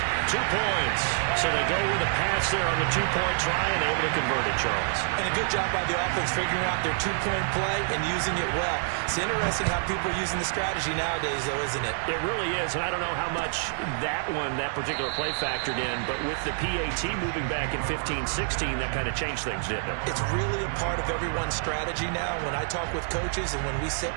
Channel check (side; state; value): left; silent; digital silence